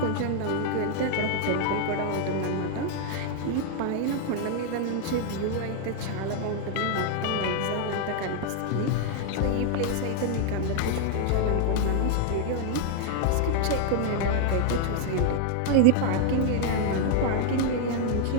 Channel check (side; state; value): both; different; correlation 0.00